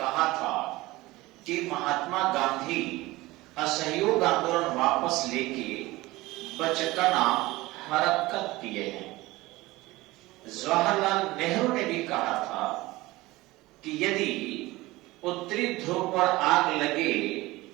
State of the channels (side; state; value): left; quieter; 19.7 dB